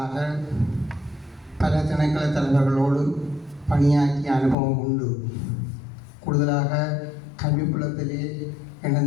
பல திணைக்கள தலைவர்களோடு பணியாற்றிய அனுபவம் உண்டு. கூடுதலாக கல்விப்புலத்திலே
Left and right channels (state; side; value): drops out; right; at 4.5 s